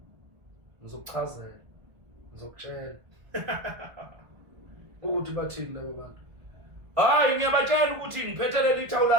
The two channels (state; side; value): late; left; 1.4 ms